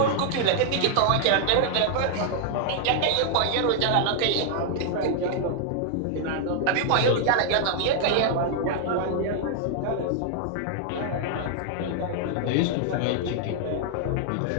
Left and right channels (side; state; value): both; different; correlation 0.00